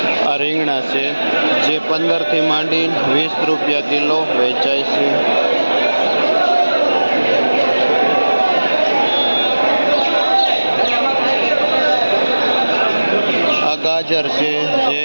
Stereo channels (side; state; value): both; inverted; correlation -1.00